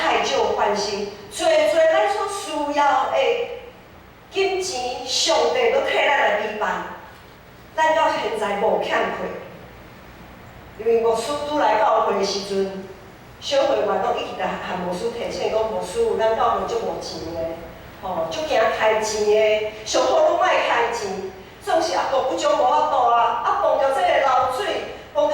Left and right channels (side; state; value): both; identical; correlation 1.00